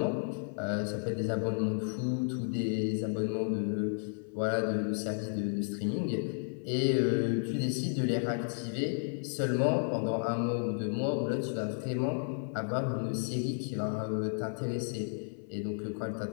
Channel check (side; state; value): right; silent; 56 dB below the other